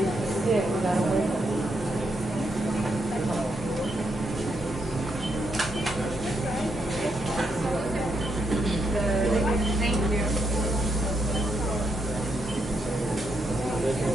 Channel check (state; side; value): normal; both; correlation 0.79